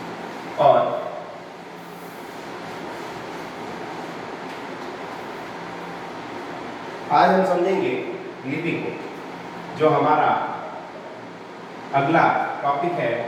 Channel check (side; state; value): both; identical; correlation 1.00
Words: और आज हम समझेंगे लिपि को। जो हमारा अगला टॉपिक है